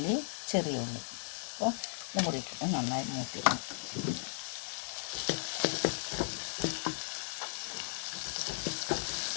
ചെറിയ ഉള്ളി. അപ്പോൾ ഇതും കൂടി ഇട്ടിട്ട് നന്നായി മൂപ്പിക്കണം.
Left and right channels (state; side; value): silent; right; digital silence